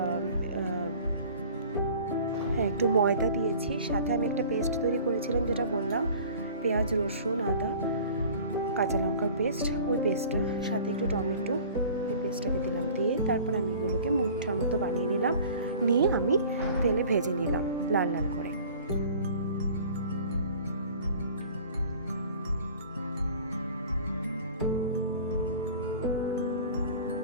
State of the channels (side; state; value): both; inverted; correlation -0.45